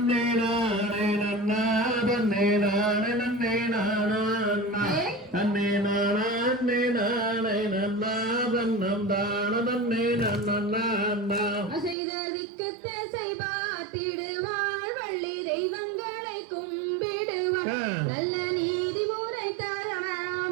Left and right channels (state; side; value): drops out; left; at 12.0 s